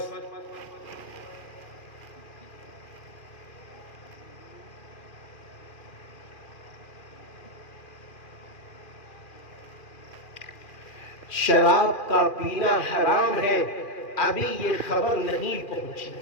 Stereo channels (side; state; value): right; late; 2.4 ms